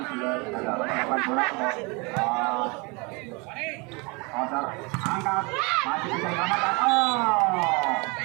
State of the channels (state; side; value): quieter; left; 28.7 dB